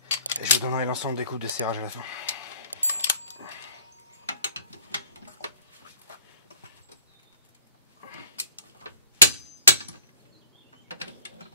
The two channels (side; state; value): both; inverted; correlation -0.50